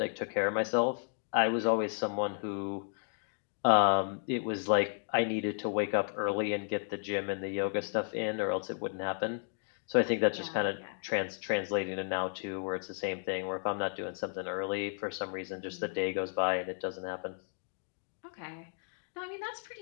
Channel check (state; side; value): silent; right; 55 dB below the other